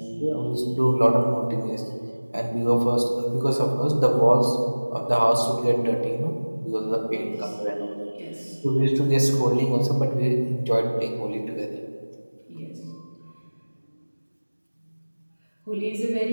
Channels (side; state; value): both; inverted; correlation -1.00